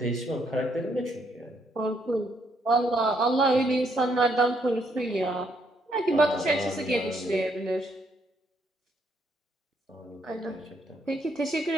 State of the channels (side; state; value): both; normal; correlation 0.72